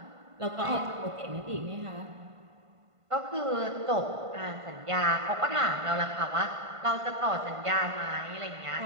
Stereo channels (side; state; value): left; late; 1.5 ms